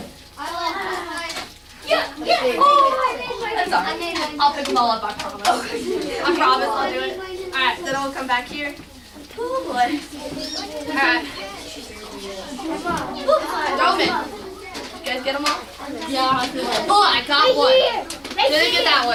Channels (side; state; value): both; identical; correlation 1.00